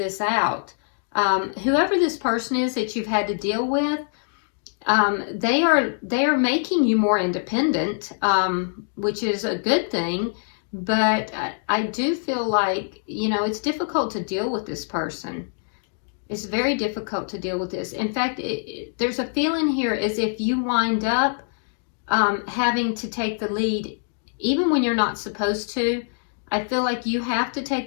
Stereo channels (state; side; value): silent; right; digital silence